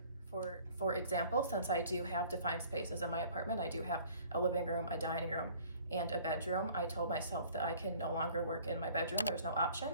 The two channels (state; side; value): inverted; both; correlation -0.52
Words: For example, since I do have defined spaces in my apartment, I do have a living room, a dining room, and a bedroom. I told myself that I can no longer work in my bedroom. There's no